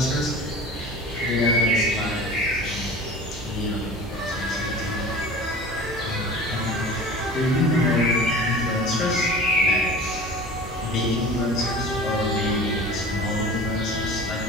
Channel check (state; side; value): normal; both; correlation 0.39